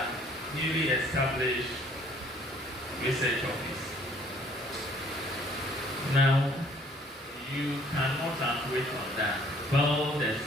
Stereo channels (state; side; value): normal; both; correlation 0.59